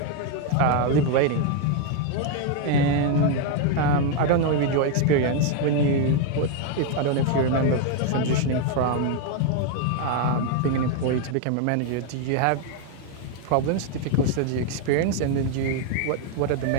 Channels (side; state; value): both; different; correlation 0.01